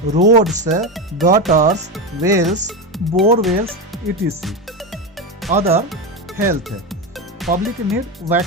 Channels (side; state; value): both; normal; correlation 0.16